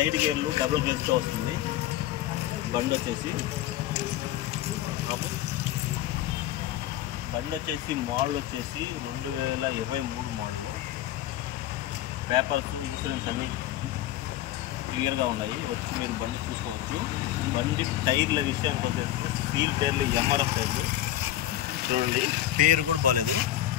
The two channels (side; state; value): right; quieter; 13.3 dB